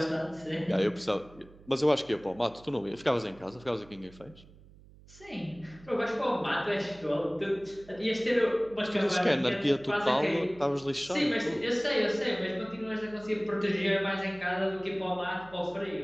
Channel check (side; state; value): right; noise; hum, 23 dB below the sound